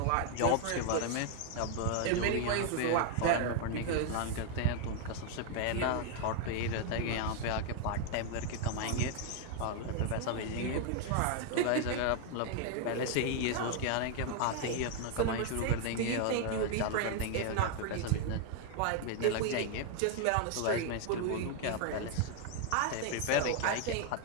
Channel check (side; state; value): both; different; correlation 0.00